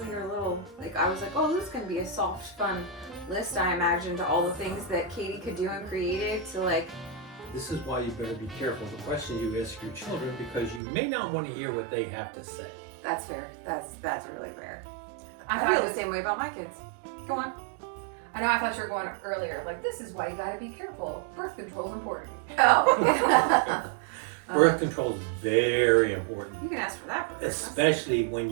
you're a little, like, I was like, oh, this is going to be a soft, fun list, I imagined, all the things that Katie could do and created to, like... This is why you better be careful the questions you ask your children, because you may not want to hear what they have to say. That's fair. That's really fair. I I thought feel the same way about my kids. Go on. I know. I thought you were going earlier. Like, this is why you got to be careful. Birth control's important. Oh. Birth control is very important, You can ask for that for Christmas. especially when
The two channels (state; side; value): drops out; left; at 10.8 s